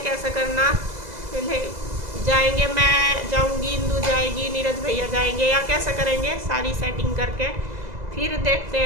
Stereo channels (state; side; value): late; left; 2.0 ms